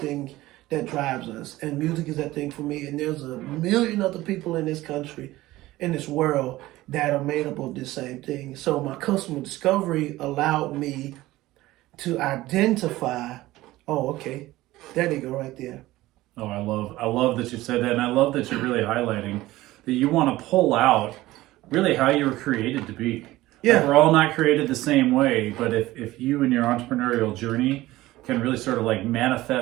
that drives us. And music is that thing for me. And there's a million other people in this country, in this world, that are made up of this same thing. So my customer discovery allowed me to identify, oh, okay, there they go right there. Oh, I love that you said that, and I love that you're really highlighting that you want to pull out really how you were created to be. Yeah. Like, we're all not created the same way, but if you in your entrepreneurial journey can really sort of like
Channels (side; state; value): left; quieter; 17.3 dB